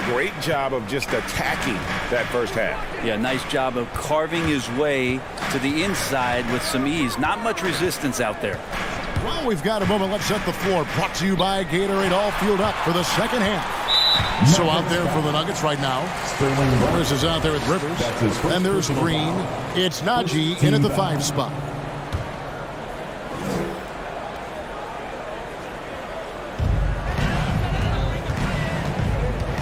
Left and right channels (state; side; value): identical; both; correlation 1.00